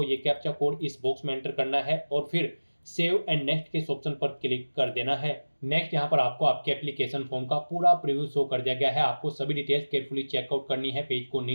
ये कैप्चा कोड इस बॉक्स में एंटर करना है और फिर सेव एंड नेक्स्ट के इस ऑप्शन पर क्लिक कर देना है। नेक्स्ट यहाँ पर आपको आपके एप्लीकेशन फॉर्म का पूरा प्रीव्यू शो कर दिया गया है। आपको सभी डिटेल्स केयरफुली चेकआउट करनी है, पेज को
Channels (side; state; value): both; inverted; correlation -1.00